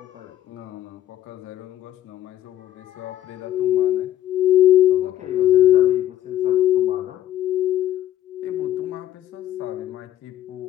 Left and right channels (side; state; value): right; quieter; 12.8 dB